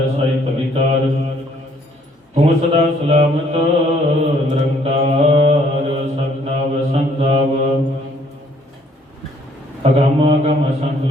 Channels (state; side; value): normal; both; correlation 0.63